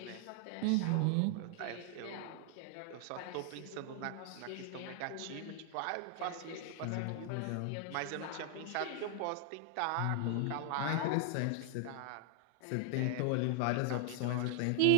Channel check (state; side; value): different; both; correlation 0.00